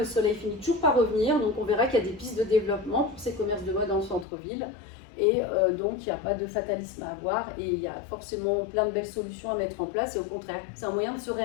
soleil finit toujours par revenir, donc on verra qu'il y a des pistes de développement pour ces commerces de mode en centre-ville, et donc il n'y a pas de fatalisme à avoir, et il y a forcément plein de belles solutions à mettre en place, et au contraire, c'est un moyen de se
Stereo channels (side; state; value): right; drops out; at 4.2 s